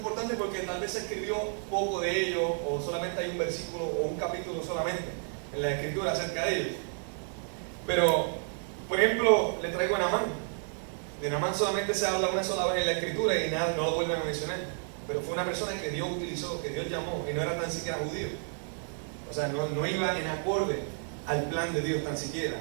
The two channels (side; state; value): left; silent; 57 dB below the other